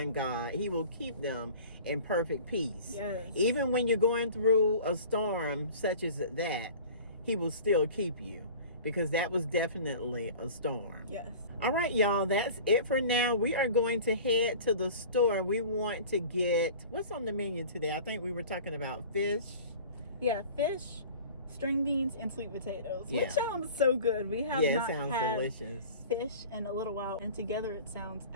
God, He will keep them in perfect peace. Even when you're going through a storm such as that, He will still keep you, because that was definitely a storm. All right, y'all, that's it for now. We are going to head to the store. We want to get, what's on the menu today? I think we were talking about fish. Fish, string beans, and sweet potatoes, which sounds so good. We have not had delicious fish in a little while, and together it sounds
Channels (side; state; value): both; inverted; correlation -0.41